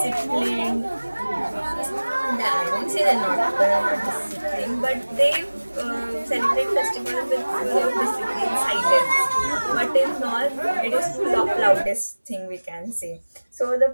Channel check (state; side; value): inverted; both; correlation -1.00